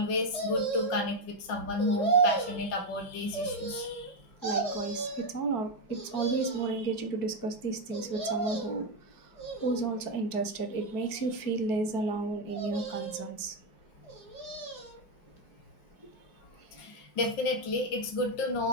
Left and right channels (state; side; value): late; right; 5.6 ms